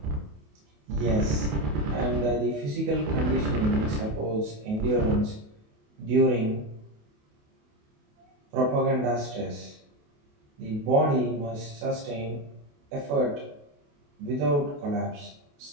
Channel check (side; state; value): left; late; 28 ms